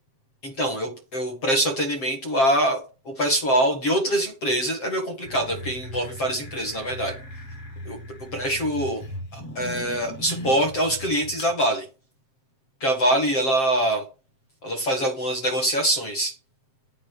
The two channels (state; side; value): late; right; 7.5 ms